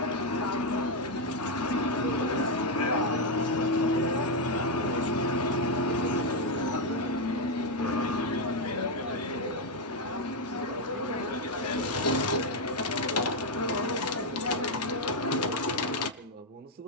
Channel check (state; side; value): normal; both; correlation 0.03